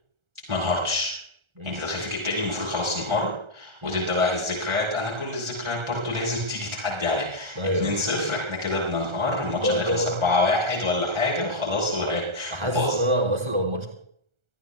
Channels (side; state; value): left; late; 1.3 ms